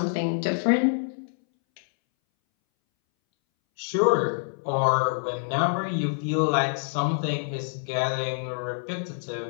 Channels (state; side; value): silent; right; 61 dB below the other